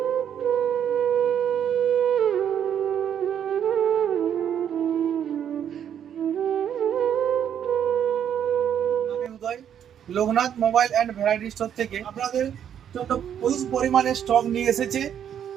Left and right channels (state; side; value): quieter; left; 9.2 dB